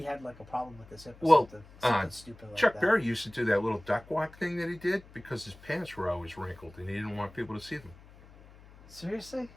had like a problem with his hip or Well, something stupid like Chuck that. Berry used to do that little duck walk thing that he did because his pants were always wrinkled and he didn't want people to see them. Seriously?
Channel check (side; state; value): left; noise; hum, 22 dB below the sound